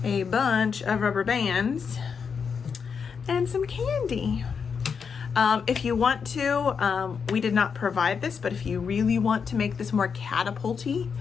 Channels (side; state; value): right; quieter; 6.2 dB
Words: a bunch of rubber bands, and some candy. If you want to, we did not provide this, but if you really want to make this more catapulty,